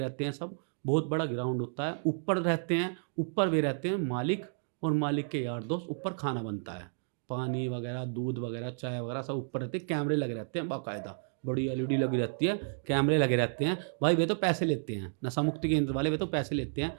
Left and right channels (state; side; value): silent; left; digital silence